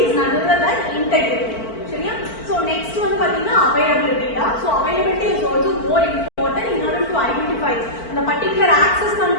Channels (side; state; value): right; late; 4.5 ms